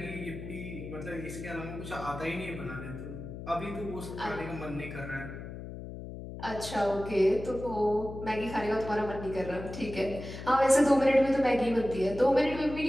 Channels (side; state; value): left; noise; hum, 10 dB below the sound